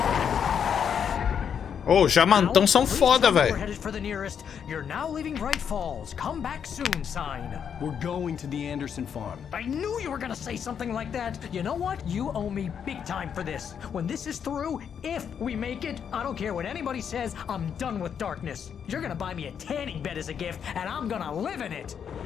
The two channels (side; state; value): right; quieter; 7.7 dB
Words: Ô, jamantão são foda, velho. You're now leaving Bright Falls. Come back soon, sign. We're going to the Anderson farm. I knew you were gonna say something like that. You know what? You owe me big time for this. When this is through, if we make it, I don't care what anybody says, I'm done with darkness. You're gonna buy me a tanning bed as a gift, and I'm gonna live in it.